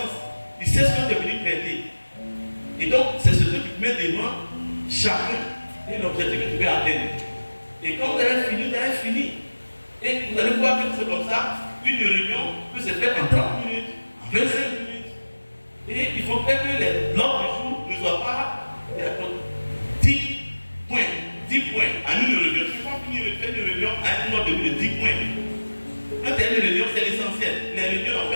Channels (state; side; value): inverted; both; correlation -1.00